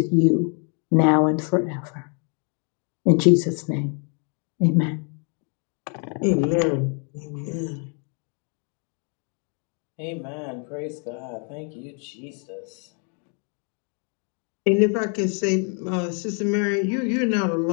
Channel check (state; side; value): quieter; right; 39.4 dB